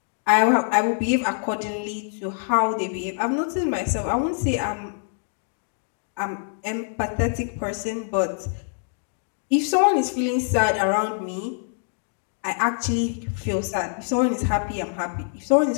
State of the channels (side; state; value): right; silent; digital silence